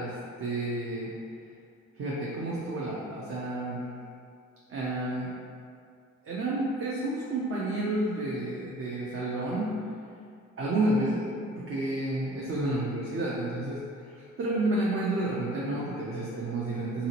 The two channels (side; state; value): both; normal; correlation 0.47